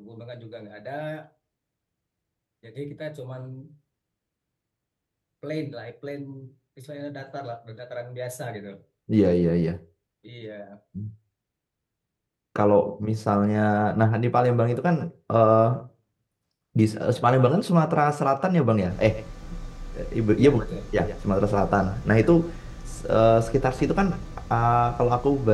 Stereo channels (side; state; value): both; identical; correlation 1.00